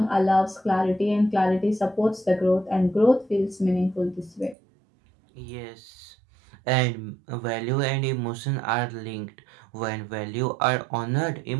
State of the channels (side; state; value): left; drops out; at 4.5 s